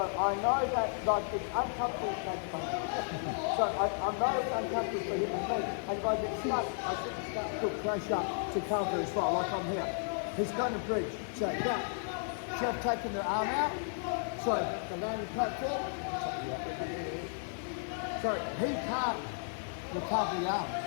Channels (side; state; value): right; silent; digital silence